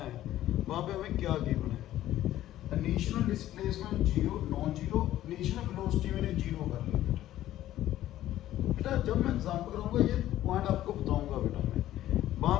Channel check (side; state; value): right; quieter; 13.6 dB